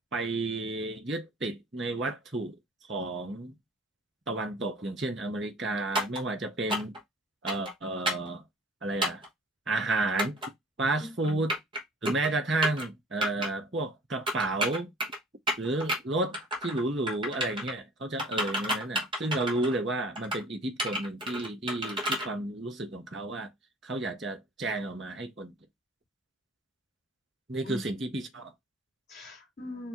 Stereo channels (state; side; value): normal; both; correlation 0.49